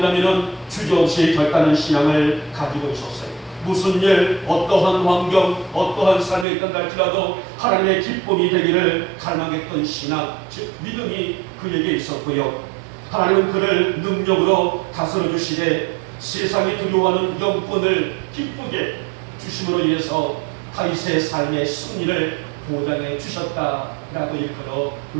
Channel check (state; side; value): drops out; left; at 6.5 s